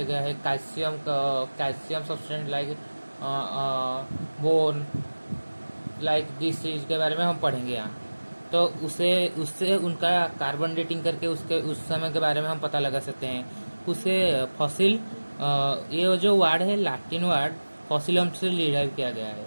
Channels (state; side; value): inverted; both; correlation -1.00